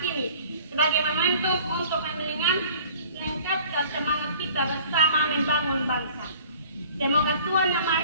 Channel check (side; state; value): both; inverted; correlation -0.49